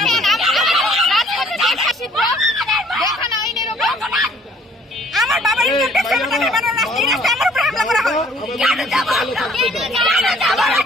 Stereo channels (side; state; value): both; normal; correlation 0.59